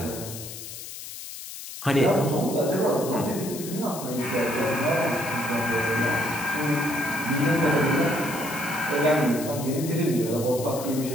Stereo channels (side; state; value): left; noise; hiss, 11 dB below the sound